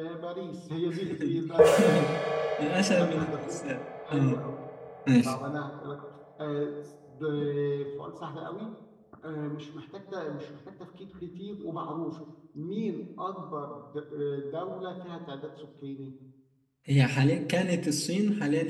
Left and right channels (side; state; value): both; identical; correlation 1.00